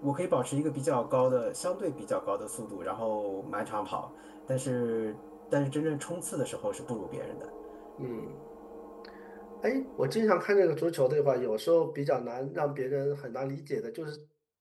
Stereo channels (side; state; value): both; identical; correlation 1.00